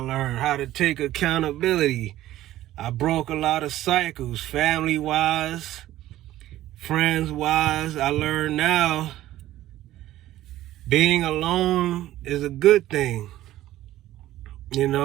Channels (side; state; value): left; quieter; 14.4 dB